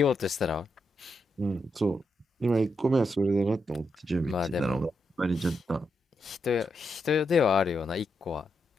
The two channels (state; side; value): normal; both; correlation 0.83